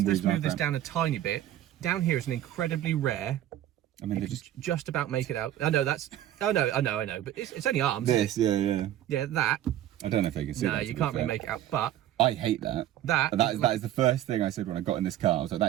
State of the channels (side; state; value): left; quieter; 12.5 dB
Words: move this down a tiny bit. Down here is an incredibly rare. I mean, they just about make it out. I know that's. Oh no, I know, but it's only arms. This, yeah. Yeah, that. I don't know if they can see that. No, you can't really make it out, but I hate that. That is the first thing I said when I got in this car. I was like,